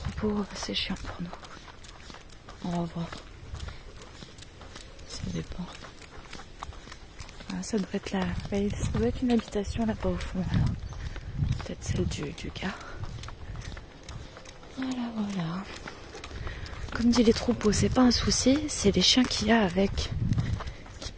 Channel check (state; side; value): identical; both; correlation 1.00